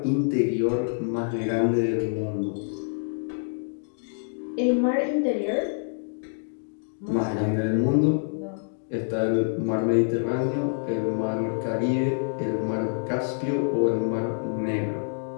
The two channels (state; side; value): silent; right; digital silence